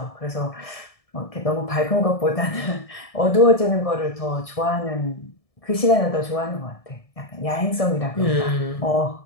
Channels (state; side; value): late; right; 1.7 ms